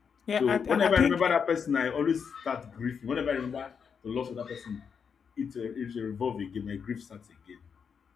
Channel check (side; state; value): right; quieter; 6.5 dB